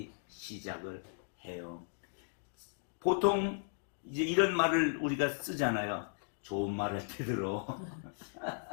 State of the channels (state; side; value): silent; right; digital silence